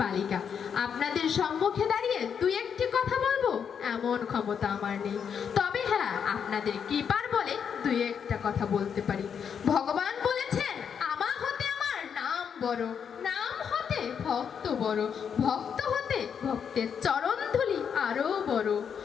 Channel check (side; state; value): right; quieter; 7.3 dB